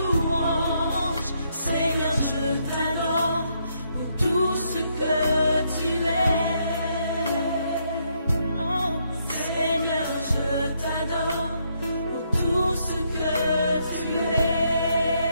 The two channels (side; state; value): both; inverted; correlation -0.75